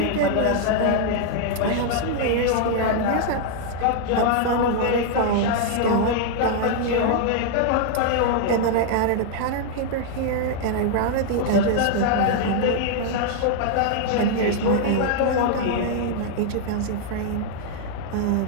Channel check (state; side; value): different; both; correlation 0.00